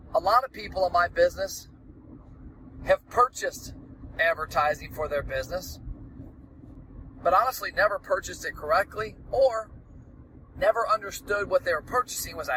A lot of people in my business have purchased advertising for their business, but honestly never purchased it correctly or never understood what they were purchasing was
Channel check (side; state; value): both; identical; correlation 1.00